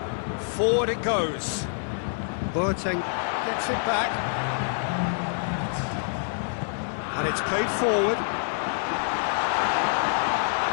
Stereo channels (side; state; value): right; silent; digital silence